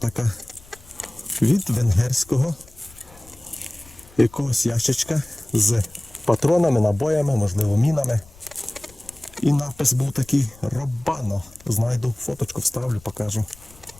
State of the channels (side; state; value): left; noise; rumble, 24 dB below the sound